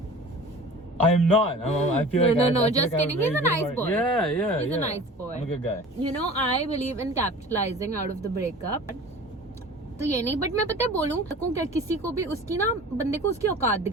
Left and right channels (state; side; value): normal; both; correlation 0.41